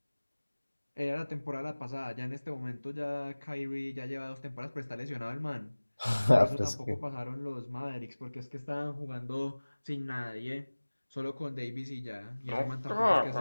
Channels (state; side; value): inverted; both; correlation -1.00